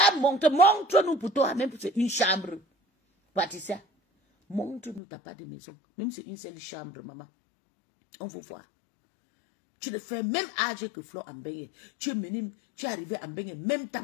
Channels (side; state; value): right; drops out; at 5.0 s